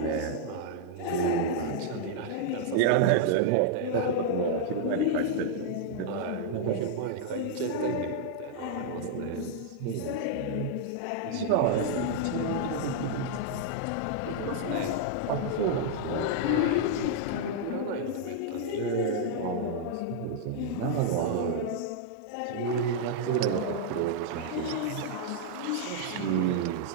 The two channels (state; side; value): different; both; correlation -0.01